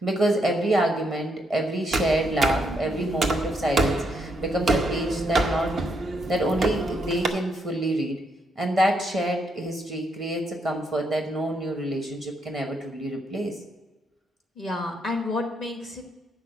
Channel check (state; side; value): normal; both; correlation 0.77